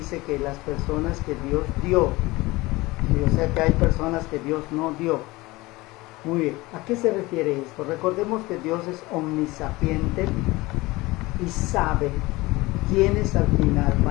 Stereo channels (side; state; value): right; quieter; 21.1 dB